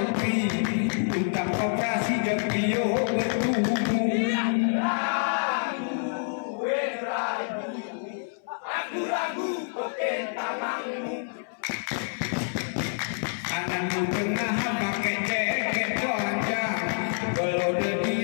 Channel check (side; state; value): right; silent; 60 dB below the other